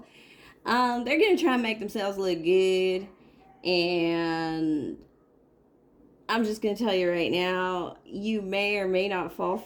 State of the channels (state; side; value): identical; both; correlation 1.00